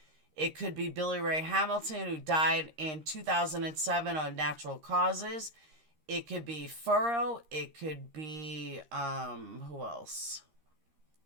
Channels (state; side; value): late; left; 13 ms